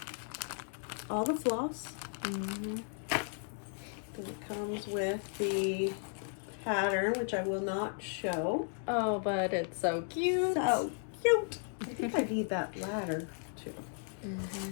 all the floss. Then it comes with the pattern, which I will not show. Oh, but it's so cute. So cute. I think I need that ladder too.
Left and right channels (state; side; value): silent; right; 54 dB below the other